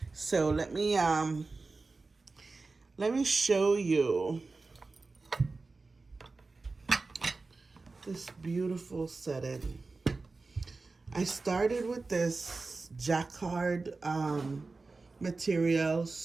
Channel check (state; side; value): quieter; left; 3.8 dB